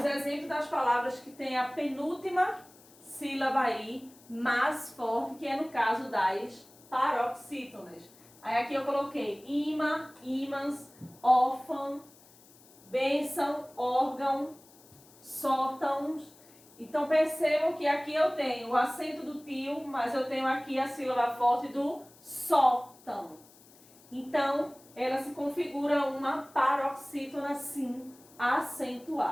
exemplos das palavras que tem a penúltima sílaba aí mais forte, que é no caso das paroxítonas. Aí aqui eu coloquei imã, ímãs, órfão, bênção, órgão, sótãos. Então percebam que aqui eu tenho o acento do tio, mas eu tenho aqui a sílaba forte do sótão. Então ela se configura uma paroxítona sim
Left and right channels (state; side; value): noise; left; hiss, 25 dB below the sound